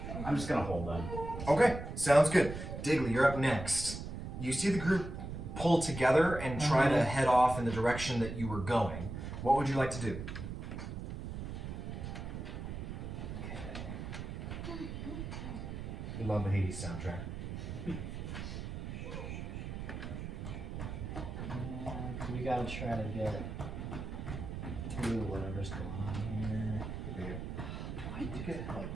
I'm just gonna hold them. Okay, sounds good. Digley, you're up next. You see the group pull together and try to head off in the direction that you were going. What would you like to do? We love the Hades soundtrack. We gotta try to get through whatever's going on here. You get help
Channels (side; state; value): right; noise; rumble, 6 dB below the sound